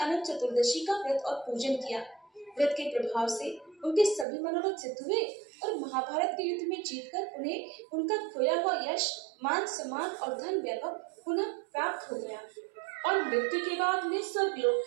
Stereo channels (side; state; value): left; drops out; at 4.2 s